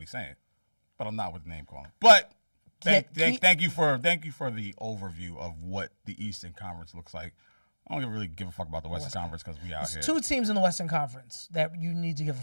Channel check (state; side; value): inverted; both; correlation -1.00